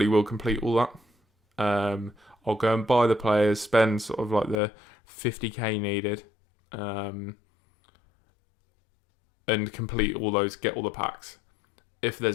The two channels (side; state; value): right; drops out; at 4.5 s